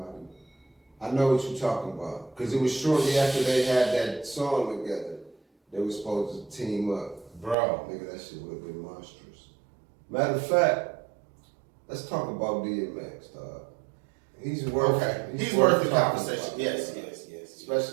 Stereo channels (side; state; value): left; drops out; at 7.6 s